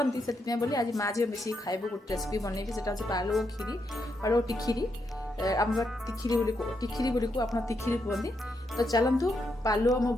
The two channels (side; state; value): both; normal; correlation 0.81